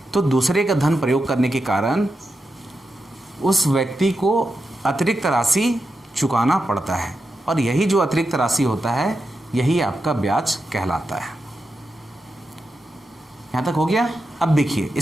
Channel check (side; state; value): both; normal; correlation 0.88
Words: तो दूसरे का धन प्रयोग करने के कारण उस व्यक्ति को अतिरिक्त राशि चुकाना पड़ता है और यही जो अतिरिक्त राशि होता है यही आपका ब्याज कहलाता है। यहाँ तक हो गया। अब देखिए,